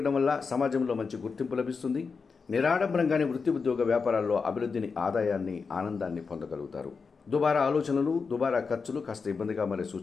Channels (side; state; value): right; quieter; 5.1 dB